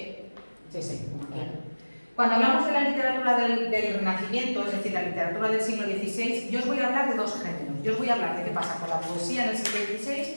claro. Cuando hablamos de la literatura del Renacimiento, es decir, la literatura del siglo XVI, yo os voy a hablar de dos géneros. Yo os voy a hablar de qué pasa con la poesía en el siglo XVI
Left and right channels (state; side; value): inverted; both; correlation -1.00